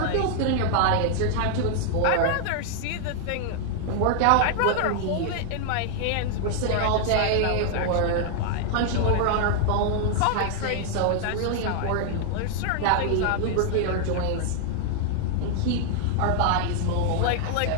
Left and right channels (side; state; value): both; different; correlation 0.00